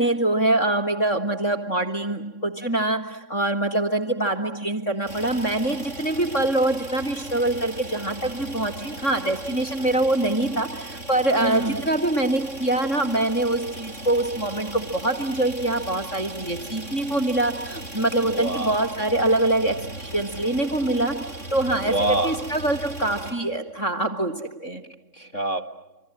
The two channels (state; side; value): late; right; 3.6 ms